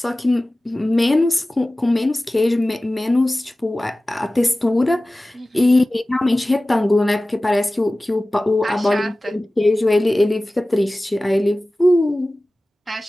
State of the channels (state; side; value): normal; both; correlation 0.97